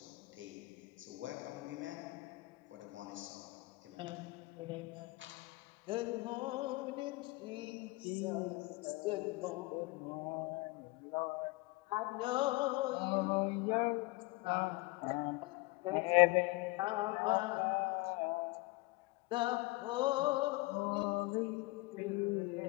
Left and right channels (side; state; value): right; quieter; 23.1 dB